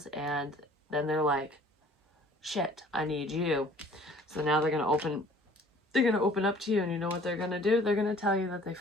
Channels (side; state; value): both; normal; correlation 0.53